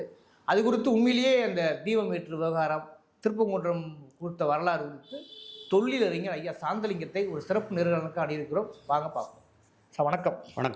அது குறித்து உண்மையிலேயே அந்த தீபம் ஏற்று விவகாரம், திருப்பங்குன்றம் குறித்த வரலாறு குறித்து தொழிலறிஞர் ஐயா சாந்தலிங்கத்தை ஒரு சிறப்பு நேர்காணலுக்கு அணியிருக்கிறோம். வாங்க பார்ப்போம். சார் வணக்கம்.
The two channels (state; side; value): identical; both; correlation 1.00